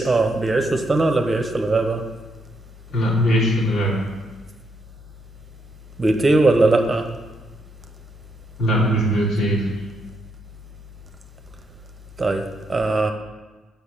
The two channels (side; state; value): both; normal; correlation 0.78